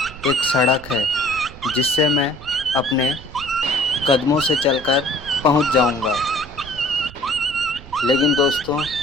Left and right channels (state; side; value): noise; right; rumble, 17 dB below the sound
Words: एक सड़क है जिससे मैं अपने कदमों से चलकर पहुंच जाऊंगा। लेकिन दोस्तों,